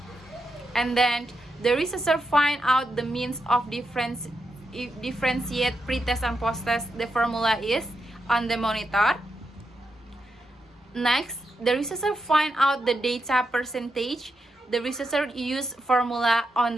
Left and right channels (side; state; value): both; normal; correlation 0.85